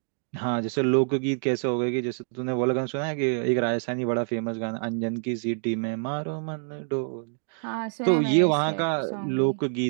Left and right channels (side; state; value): left; silent; 60 dB below the other